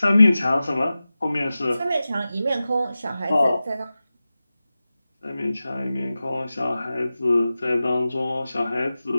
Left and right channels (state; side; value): inverted; both; correlation -0.95